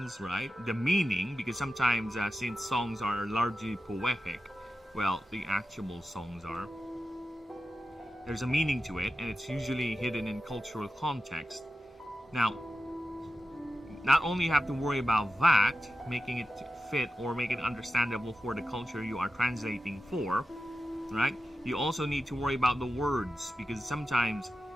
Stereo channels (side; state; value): both; normal; correlation 0.92